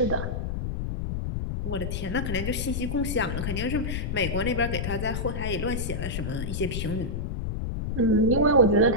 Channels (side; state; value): left; noise; rumble, 3 dB below the sound